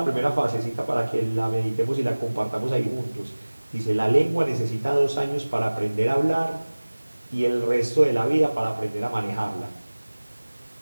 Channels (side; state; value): both; inverted; correlation -1.00